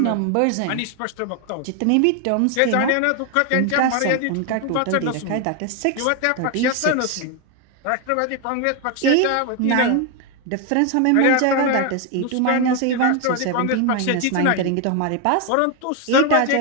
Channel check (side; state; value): both; different; correlation 0.01